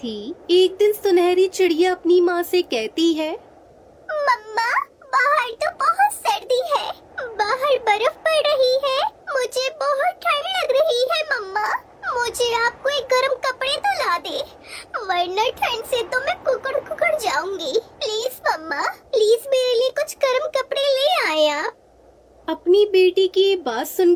एक दिन सुनहरी चिड़िया अपनी माँ से कहती है, मम्मा, बाहर तो बहुत सर्दी है, बाहर बर्फ पड़ रही है, मुझे बहुत ठंड लग रही है। मम्मा, मुझे आप कोई गर्म कपड़े तो ला दे, वरना ठंड से तो मैं कुकड़ जाऊंगी। प्लीज मम्मा, प्लीज मेरे लिए कुछ गर्म कपड़े ले आए आप। अपनी बेटी की ये बात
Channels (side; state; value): both; identical; correlation 1.00